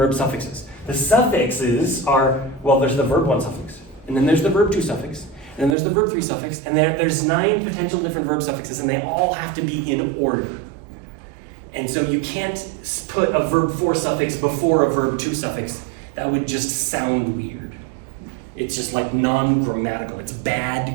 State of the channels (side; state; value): left; drops out; at 5.8 s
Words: suffixes. The suffixes are, there's the verb 1 suffix, and then there's the verb 2 suffix, and then there's the verb 3 suffix, and there's 9 potential different verb suffixes, and they all have to be in order. And so you can't put a verb 4 suffix before a verb 2 suffix. That would just sound weird. It's just like non-grammatical. It's